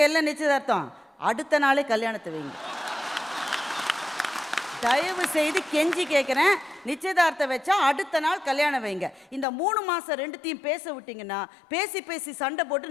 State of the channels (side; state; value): right; drops out; at 9.5 s